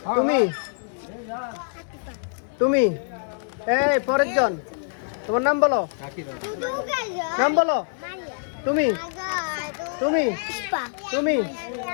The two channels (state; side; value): silent; right; 62 dB below the other